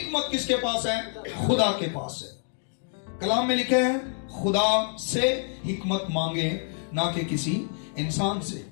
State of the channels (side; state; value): right; silent; 56 dB below the other